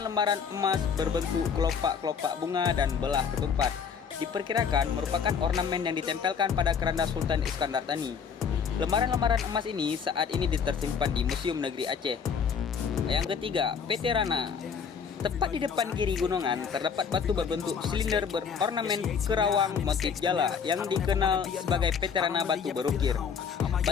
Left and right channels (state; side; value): quieter; right; 6.5 dB